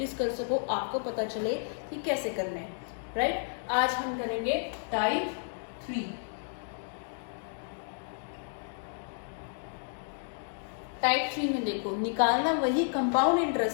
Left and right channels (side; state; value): right; silent; digital silence